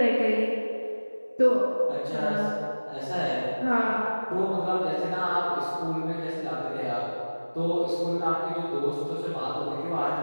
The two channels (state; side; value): inverted; both; correlation -1.00